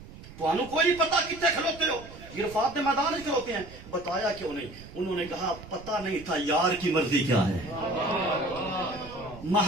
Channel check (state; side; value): noise; right; rumble, 17 dB below the sound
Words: توانو کوئی نہیں پتا کتنے کھلوتے ہو, عرفات کے میدان میں کھلوتے ہیں. بتایا کیوں نہیں؟ انہوں نے کہا پتا نہیں تھا یار کی مرضی کیا ہے,